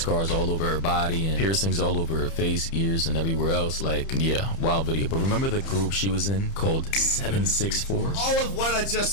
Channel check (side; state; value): right; late; 30 ms